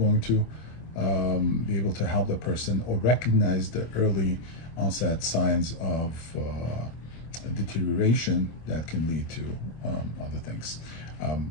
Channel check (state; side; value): late; right; 25 ms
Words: to be able to help the person or recognize the early onset signs of deterioration that can lead to other things.